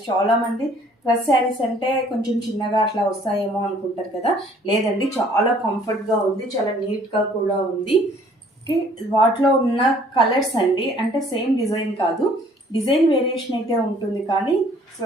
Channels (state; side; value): normal; both; correlation 0.57